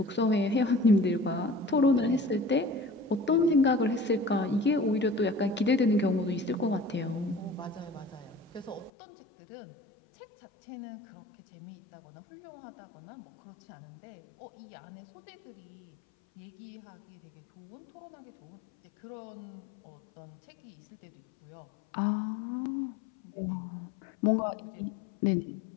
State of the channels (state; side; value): drops out; right; at 8.9 s